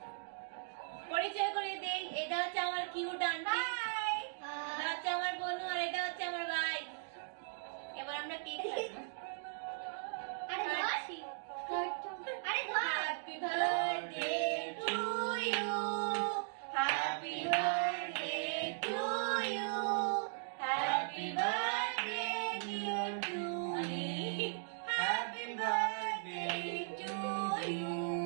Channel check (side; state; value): left; silent; digital silence